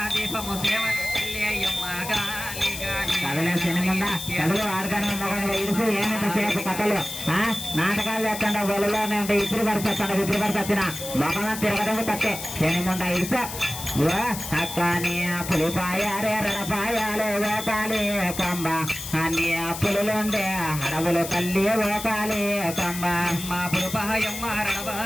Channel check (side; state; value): left; noise; hiss, 8 dB below the sound